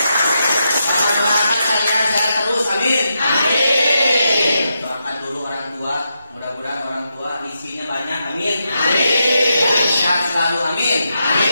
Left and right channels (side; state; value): both; inverted; correlation -0.84